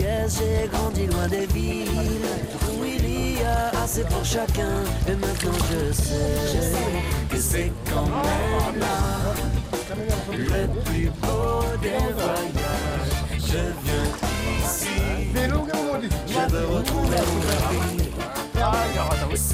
j'ai grandi loin des villes où il y a assez pour chacun. Et maintenant je sais que c'est quand même là le plus beau des voyages. Je viens ici, je veux retrouver mon ami.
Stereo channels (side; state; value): both; identical; correlation 1.00